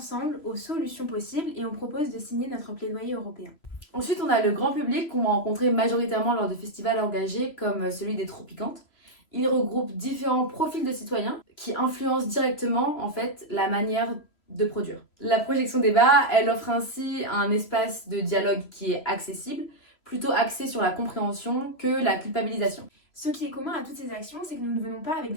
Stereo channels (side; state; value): right; late; 3.0 ms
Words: aux solutions possibles et on propose de signer notre plaidoyer européen. Ensuite, on a le grand public qu'on va rencontrer majoritairement lors de festivals engagés comme celui des Tropicantes. Il regroupe différents profils de citoyens qui influencent directement en fait la manière de produire. La projection débat, elle offre ainsi un espace de dialogue qui est accessible, plutôt axé sur la compréhension que la culpabilisation. Ce qui est commun à toutes ces actions, c'est que nous ne venons pas avec